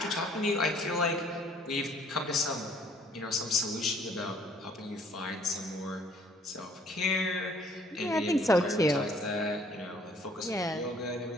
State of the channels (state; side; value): normal; both; correlation 0.59